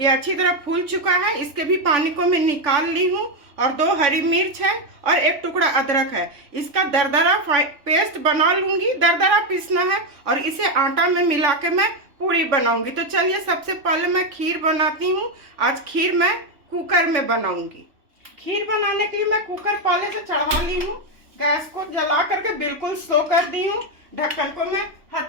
अच्छी तरह फूल चुका है, इसके भी पानी को मैं निकाल ली हूँ। और 2 हरी मिर्च है और 1 टुकड़ा अदरक है। इसका दरदरा पेस्ट बना लूंगी। दरदरा पीसना है और इसे आटा में मिला के मैं पूरी बनाऊंगी। तो चलिए सबसे पहले मैं खीर बनाती हूँ। आज खीर मैं कुकर में बनाऊंगी। खीर बनाने के लिए मैं कुकर पहले से चढ़ा ली हूँ। गैस को जला करके बिल्कुल स्लो कर दी हूँ। ढक्कन को मैं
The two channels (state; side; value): late; left; 3.5 ms